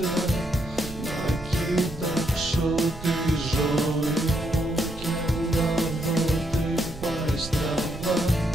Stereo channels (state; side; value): noise; right; rumble, 13 dB below the sound